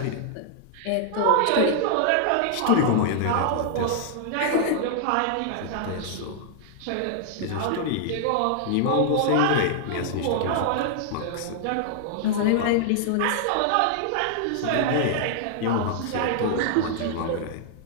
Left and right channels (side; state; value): both; different; correlation -0.01